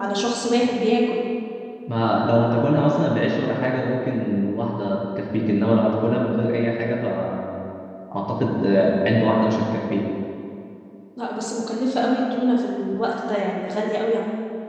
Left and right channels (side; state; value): both; identical; correlation 1.00